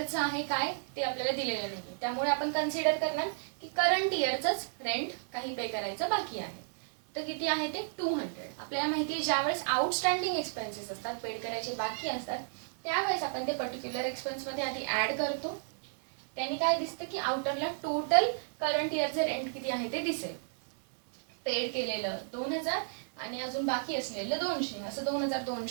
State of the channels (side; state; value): left; silent; digital silence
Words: आहे काय ते आपल्याला दिलेलं नाही. त्यामुळे आपण कन्सिडर करणार की करंट इयरचंच रेंट काही पे करायचं बाकी आहे. तर किती आहे ते 200. आपल्याला माहिती आहे ज्यावेळेस आउटस्टँडिंग एक्सपेन्सेस असतात, पेड करायचे बाकी असतात, त्यावेळेस आपण ते पर्टिक्युलर एक्सपेन्समध्ये आधी ॲड करतो. त्यांनी काय दिसतं की आउटरला टोटल करंट इयरचे रेंट किती आहे ते दिसेल. पेड केलेलं 2000 आणि अजून बाकी असलेलं 200, असं